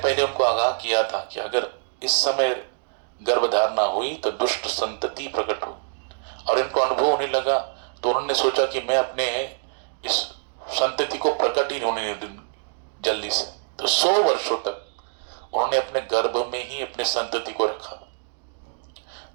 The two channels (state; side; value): silent; left; digital silence